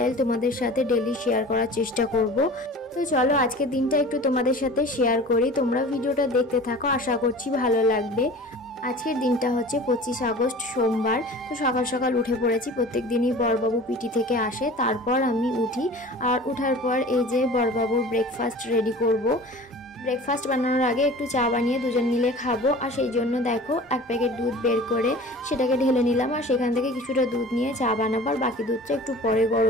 তোমাদের সাথে ডেলি শেয়ার করার চেষ্টা করব। তো চলো আজকের দিনটা একটু তোমাদের সাথে শেয়ার করি। তোমরা ভিডিওটা দেখতে থাকো, আশা করছি ভালো লাগবে। আজকের দিনটা হচ্ছে 25 আগস্ট সোমবার। তো সকাল সকাল উঠে পড়েছি। প্রত্যেক দিনই বড়বাবু পিটি থেকে আসে, তারপর আমি উঠি। আর উঠার পর এই যে বড়বাবুর ব্রেকফাস্ট রেডি করব। ব্রেকফাস্ট বানানোর আগে একটু চা বানিয়ে দুজন মিলে খাবো, আর সেই জন্য দেখো এক প্যাকেট দুধ বের করে সেটাকে ঢেলে নিলাম, আর সেখান থেকে কিছুটা দুধ নিয়ে চা বানাবো। আর বাকি দুধটা একটু পরে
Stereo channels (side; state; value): both; normal; correlation 0.41